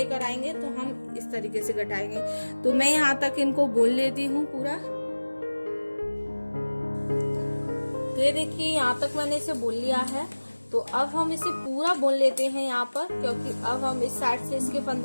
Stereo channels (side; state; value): both; inverted; correlation -1.00